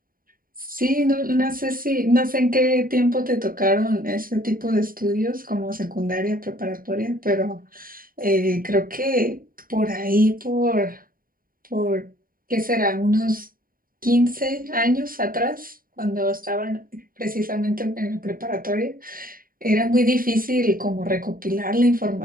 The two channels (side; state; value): left; late; 0.41 ms